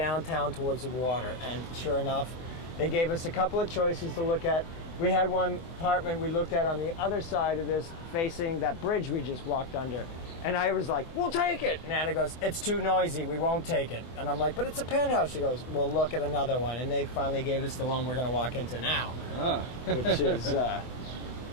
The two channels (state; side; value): late; right; 24 ms